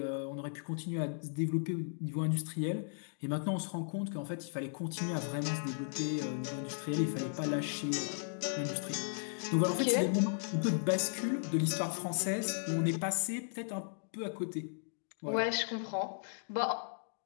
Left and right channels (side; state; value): right; silent; digital silence